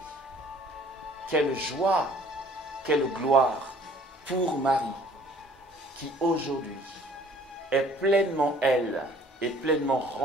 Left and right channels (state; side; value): normal; both; correlation 0.54